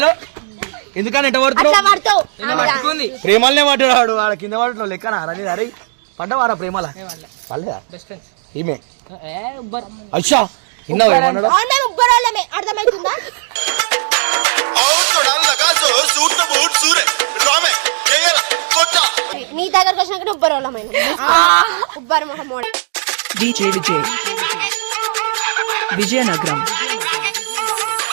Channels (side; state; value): left; silent; digital silence